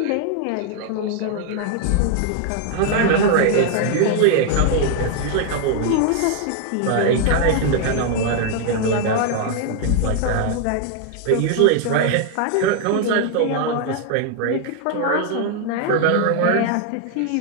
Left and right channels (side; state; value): both; different; correlation 0.00